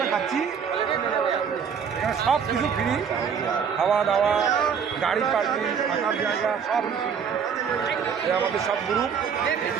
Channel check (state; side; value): quieter; left; 7.0 dB